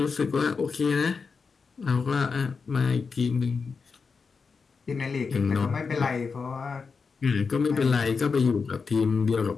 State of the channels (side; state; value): right; quieter; 5.1 dB